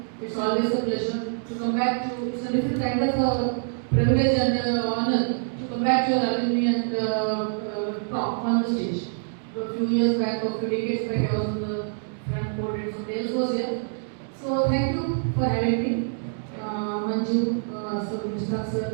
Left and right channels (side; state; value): left; silent; digital silence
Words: It's always a pleasure to come back to. It's a different kind of privilege and honor to come back to your alumni and talk on the stage. A few years back, or a few decades back, I was on the front podium, so Dales was here. So thank you for having me, Manju, so Mr.